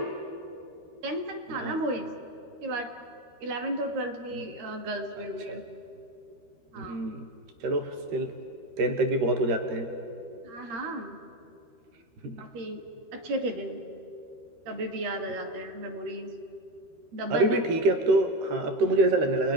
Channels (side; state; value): left; late; 13 ms